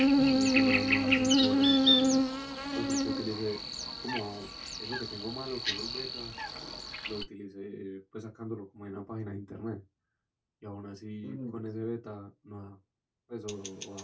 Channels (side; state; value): both; identical; correlation 1.00